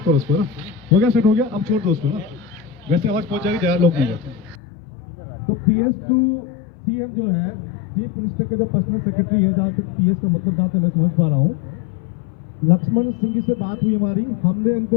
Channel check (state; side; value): drops out; right; at 4.5 s